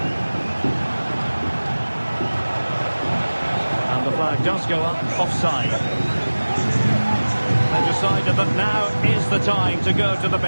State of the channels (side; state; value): both; inverted; correlation -1.00